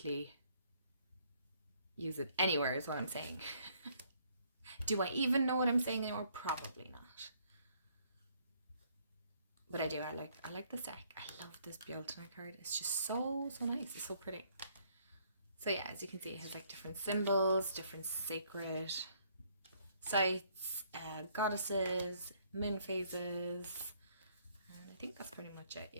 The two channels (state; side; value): inverted; both; correlation -0.66